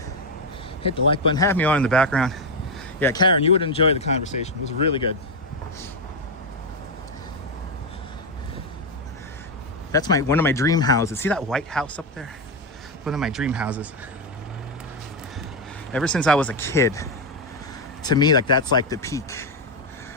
hit the like button, have me on in the background. Yeah, Karen, you would enjoy the conversation. It was really good. That's one of my dream houses. See that white house up there? One of my dream houses. Ever since I was a kid, to me, like, that's like the peak.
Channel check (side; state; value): both; normal; correlation 0.06